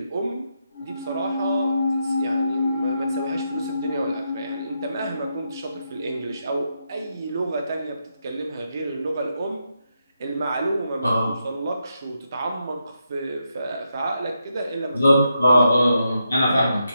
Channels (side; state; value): both; inverted; correlation -0.83